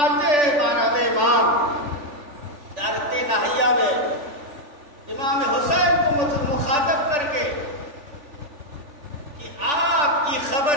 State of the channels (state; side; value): late; left; 3.5 ms